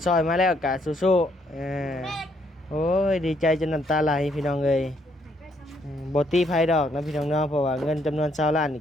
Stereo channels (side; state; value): both; normal; correlation 0.71